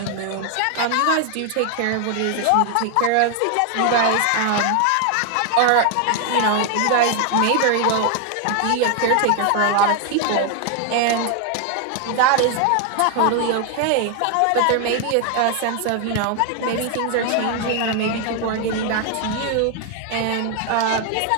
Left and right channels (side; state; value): both; different; correlation 0.01